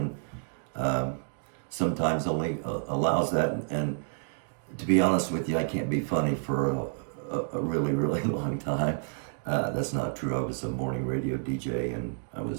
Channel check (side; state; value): left; silent; digital silence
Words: sometimes only allows that. And to be honest with you, I can't be funny for a really, really long time. That's not true. I was a morning radio DJ and I